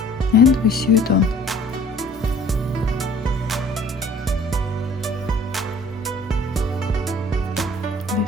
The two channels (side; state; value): both; normal; correlation 0.52